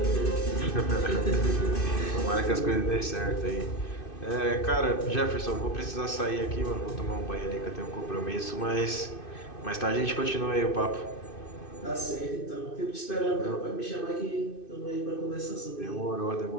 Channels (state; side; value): late; right; 2.6 ms